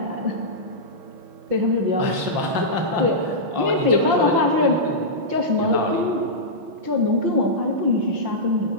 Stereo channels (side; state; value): left; late; 5.6 ms